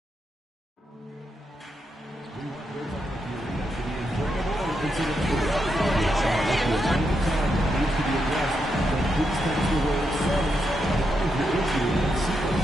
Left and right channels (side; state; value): both; normal; correlation 0.83